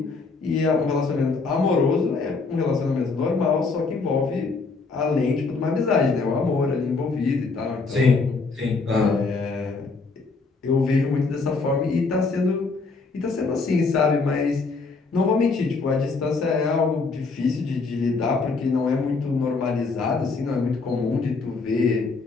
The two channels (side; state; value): right; quieter; 4.2 dB